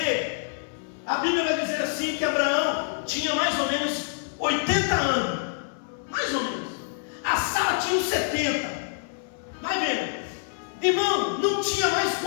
a Bíblia vai dizer assim, que Abraão tinha mais ou menos 80 anos, mais ou menos. A Sara tinha uns 70. Vai vendo, irmão, não tinha mais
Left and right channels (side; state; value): right; silent; 61 dB below the other